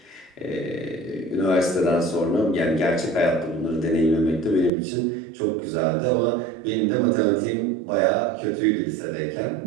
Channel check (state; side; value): drops out; left; at 4.7 s